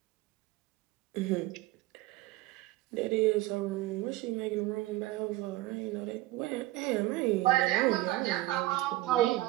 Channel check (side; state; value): left; quieter; 17.4 dB